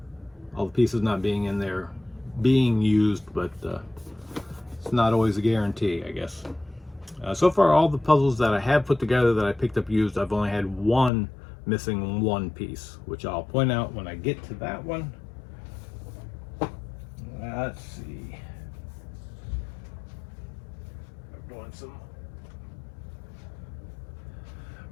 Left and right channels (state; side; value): drops out; right; at 11.1 s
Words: the pieces not being in there being used, but it's not always a guarantee, I guess. So far, all the puzzles that I have put together that I picked up used, I've only had one missing one piece, which I'll point out when I get to that one. Let's see. I'm doing some